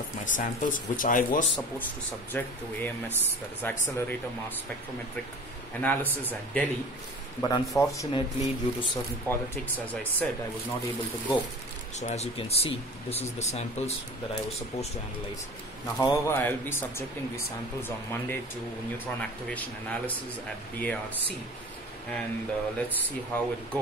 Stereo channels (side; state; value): both; normal; correlation 0.40